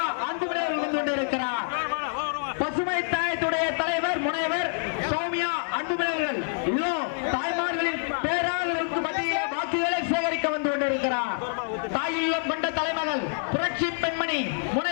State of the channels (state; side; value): silent; right; 56 dB below the other